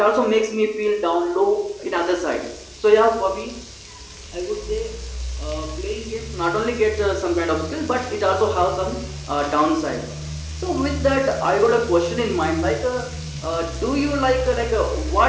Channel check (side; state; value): both; identical; correlation 1.00